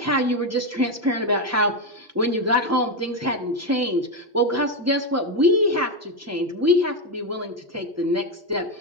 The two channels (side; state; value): both; normal; correlation 0.09